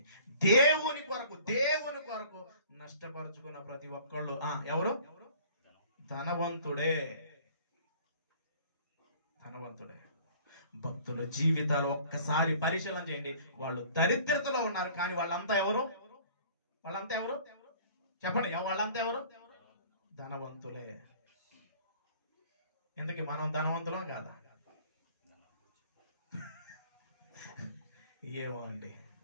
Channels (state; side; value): inverted; both; correlation -0.51